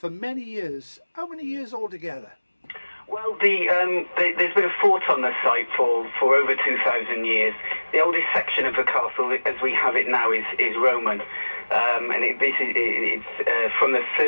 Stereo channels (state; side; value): inverted; both; correlation -1.00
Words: many years. How many years altogether? Well, there's been a fort on the site for over 2,000 years. The oldest section of the castle, as we have it now, is Roman. And it's from the